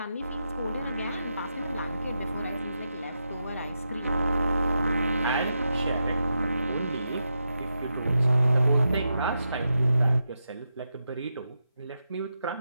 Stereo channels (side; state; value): both; inverted; correlation -0.86